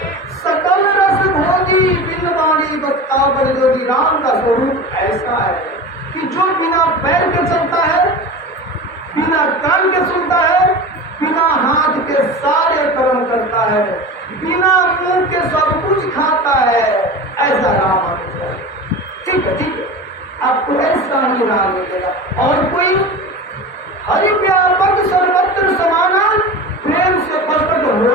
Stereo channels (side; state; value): both; normal; correlation 0.31